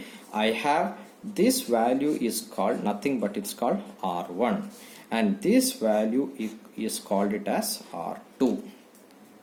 I have this value is called nothing but it's called r1 and this value is called it as r2.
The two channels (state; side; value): identical; both; correlation 1.00